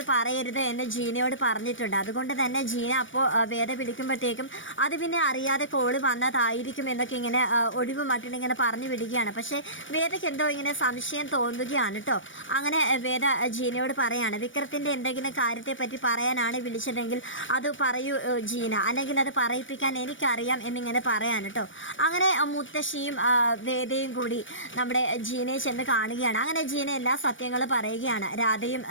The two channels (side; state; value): right; late; 0.56 ms